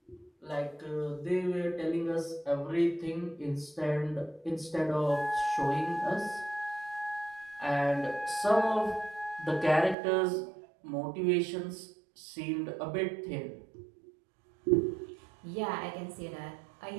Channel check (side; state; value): left; drops out; at 10.0 s